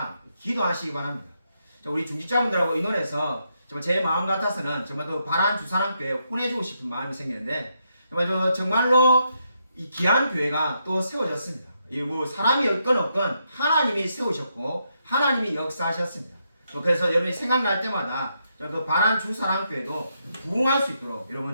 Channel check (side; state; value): both; inverted; correlation -0.80